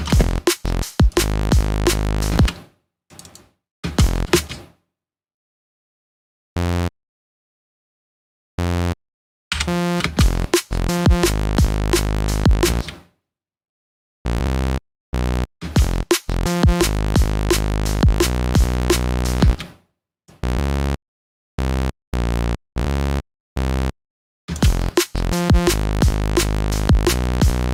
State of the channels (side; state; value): both; identical; correlation 1.00